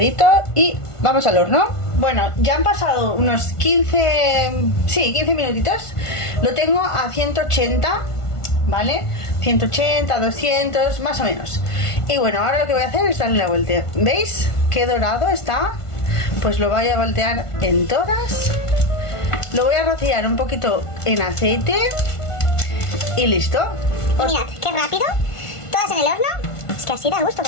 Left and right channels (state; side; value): late; right; 1.5 ms